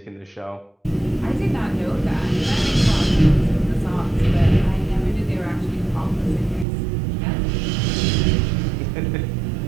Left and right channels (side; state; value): left; drops out; at 6.7 s